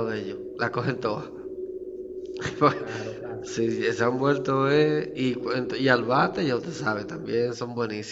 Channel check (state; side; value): identical; both; correlation 1.00